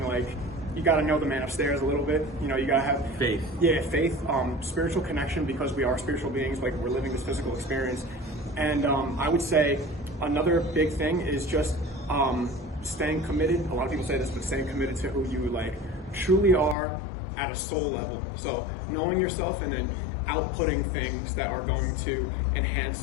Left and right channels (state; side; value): drops out; right; at 16.8 s